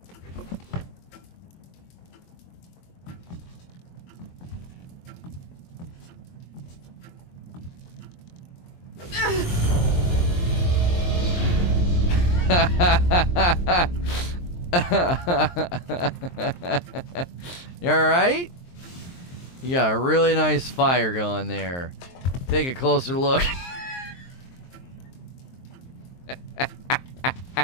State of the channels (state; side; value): late; right; 23 ms